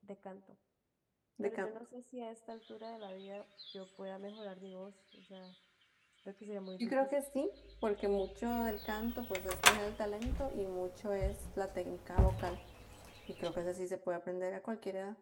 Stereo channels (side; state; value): both; identical; correlation 1.00